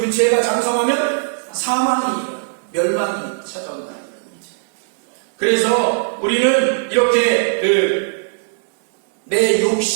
죄가 장성하면 사망이, 멸망이 찾아온다. 그래서 우리는 이렇게 내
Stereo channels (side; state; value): left; silent; digital silence